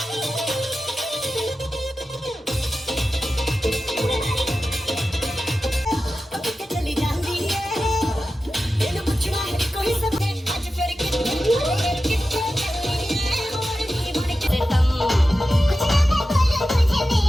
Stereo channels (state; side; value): normal; both; correlation 0.93